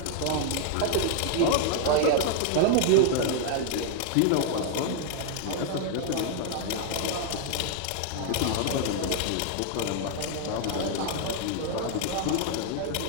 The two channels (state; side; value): different; both; correlation 0.00